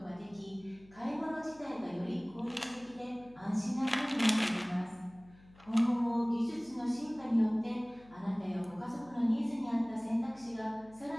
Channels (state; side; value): noise; left; hum, 25 dB below the sound